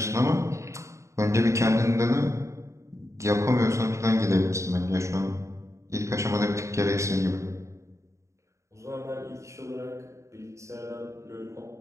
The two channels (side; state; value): left; late; 0.14 ms